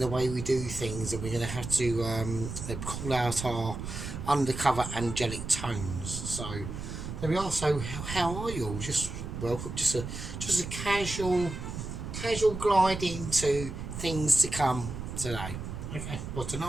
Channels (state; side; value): noise; right; rumble, 7 dB below the sound